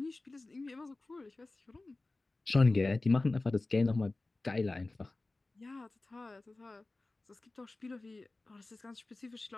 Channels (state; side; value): quieter; right; 3.1 dB